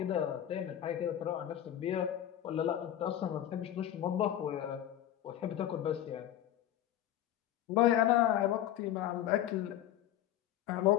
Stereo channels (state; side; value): quieter; right; 11.7 dB